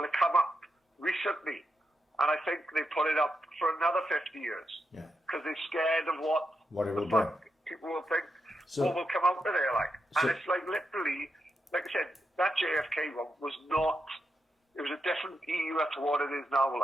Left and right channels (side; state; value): both; normal; correlation 0.85